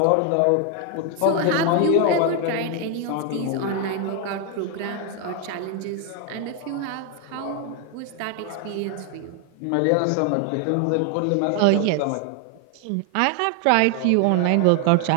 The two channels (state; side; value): different; both; correlation 0.00